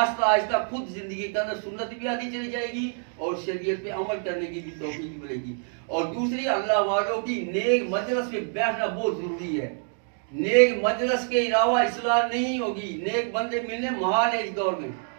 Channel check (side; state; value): left; silent; 58 dB below the other